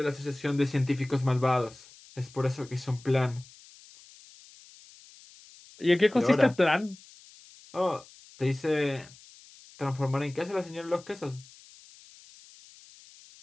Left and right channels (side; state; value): left; noise; hiss, 23 dB below the sound